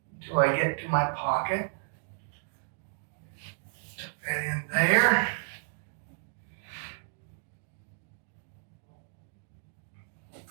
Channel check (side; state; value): left; silent; digital silence